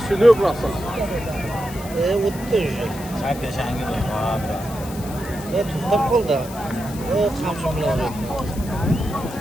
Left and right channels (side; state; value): left; noise; hiss, 16 dB below the sound